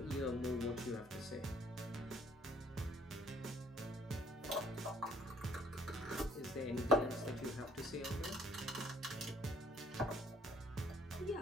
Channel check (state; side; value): normal; both; correlation 0.60